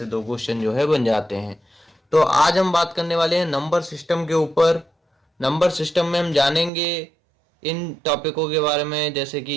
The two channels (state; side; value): drops out; left; at 6.7 s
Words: 2 क्वेश्चन जो है बन जाते हैं। तो आज हम बात करने वाले हैं नंबर सिस्टम के ऊपर। नंबर सिस्टम में हम जानेंगे इन टॉपिकों के बारे में, जैसे कि